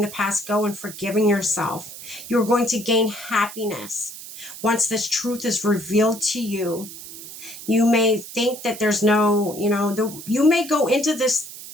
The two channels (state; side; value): noise; right; hiss, 13 dB below the sound